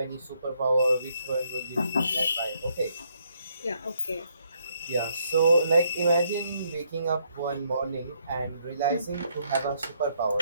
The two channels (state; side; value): inverted; both; correlation -0.72